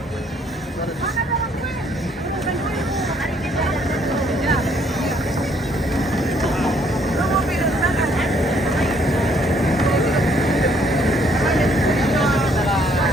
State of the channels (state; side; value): normal; both; correlation 0.66